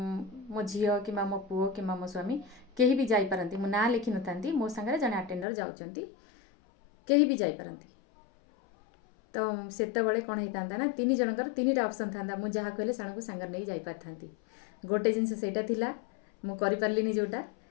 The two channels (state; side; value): drops out; right; at 5.5 s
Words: झील कि मो पुओ कि मो स्वामी कहीं भी जाई पारंती मु ना लिखि नथांती मो सांगरे जने अटेंडर जाउचंती कहीं भी जाई पारंती तो सेतबेले कौन होता ना तीन जनकर तीन टा ऑप्शन था मु जहाँ कहले साण को सांगर नहीं जाई पारथांती गोटे जिनस सेटा थिला मु करि पारलिनी जोटा